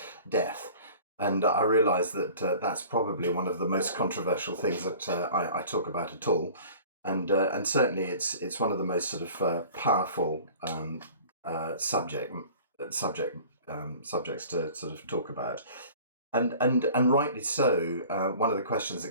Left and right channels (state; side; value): inverted; both; correlation -0.45